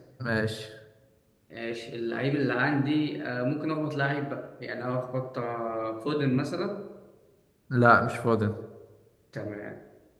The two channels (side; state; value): both; identical; correlation 1.00